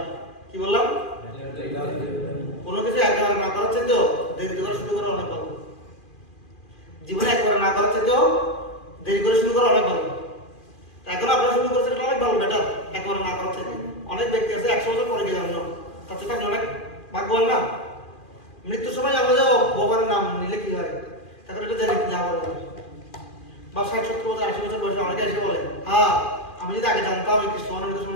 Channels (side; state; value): right; late; 2.4 ms